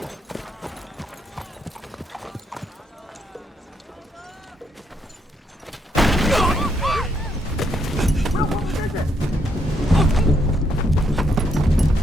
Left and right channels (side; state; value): both; normal; correlation 0.75